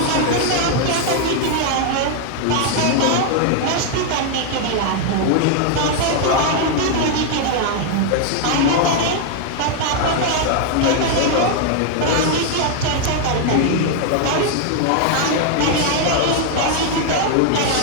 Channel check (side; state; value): both; different; correlation 0.00